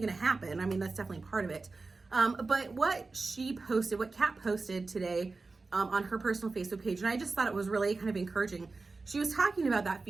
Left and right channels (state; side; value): quieter; left; 3.8 dB